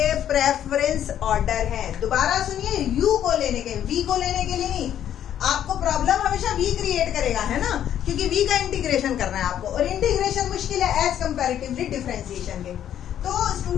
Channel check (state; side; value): quieter; right; 10.5 dB